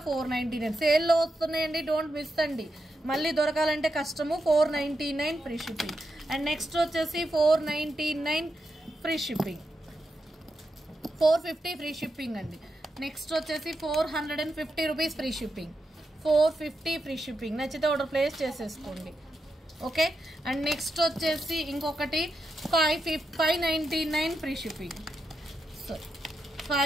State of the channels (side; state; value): both; normal; correlation 0.86